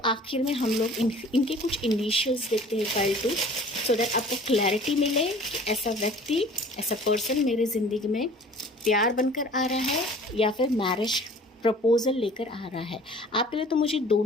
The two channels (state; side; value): normal; both; correlation 0.48